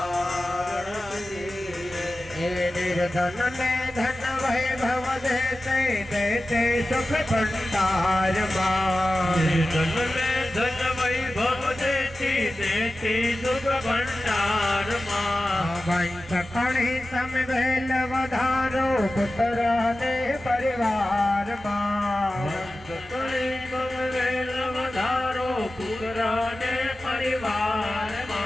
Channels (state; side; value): normal; both; correlation 0.95